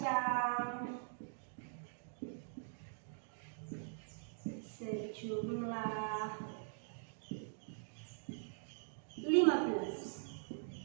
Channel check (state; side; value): silent; left; digital silence